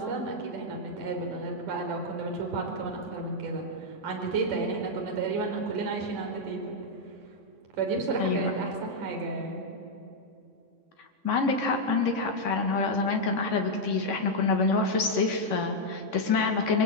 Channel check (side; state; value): left; late; 3.6 ms